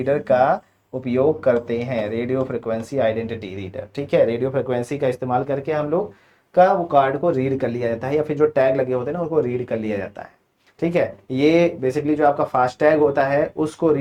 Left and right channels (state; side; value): identical; both; correlation 1.00